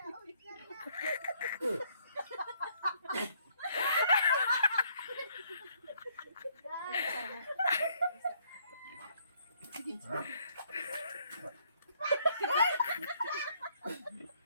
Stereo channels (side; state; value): both; inverted; correlation -0.67